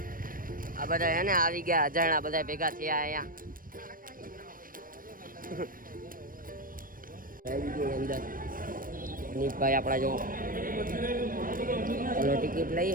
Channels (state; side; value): late; left; 0.40 ms